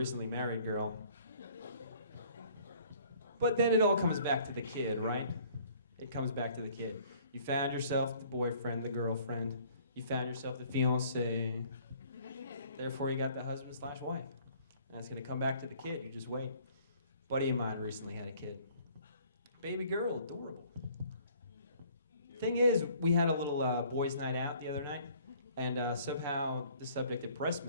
married girl. But then it all comes back to the kid, right? It comes back to the kid. You found yourself the boyfriend, the girlfriend. You found yourself the fiancé. Therefore, you got the husband/wife. And it's going to come back to the kid. You just wait. A buddy of mine recently had a kid. Baby girl, adorable. Thing is, we had a little boys' night out the other night, and somehow the subject of breast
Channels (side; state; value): both; inverted; correlation -0.56